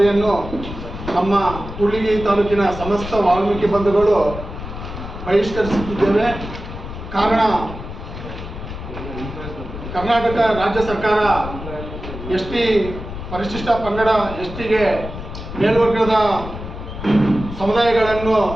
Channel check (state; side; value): noise; left; rumble, 10 dB below the sound